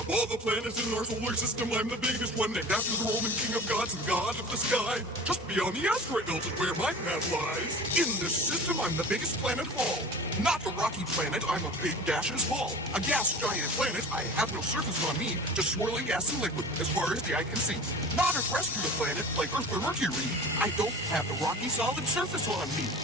all the planets in our solar system, I'm the biggest one, named after the Roman king of gods and god of the sky. Just beyond the asteroid belt is where my path lies. In this system, I'm the biggest planet of all. Not a rocky planet, I'm a big gaseous ball. A gas giant planet, I have no surface on me, just swirling gas and liquid as far as the eye can see. Not a terrestrial planet like Earth or Mercury, I don't have the rocky solid surface on me.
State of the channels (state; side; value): normal; both; correlation 0.38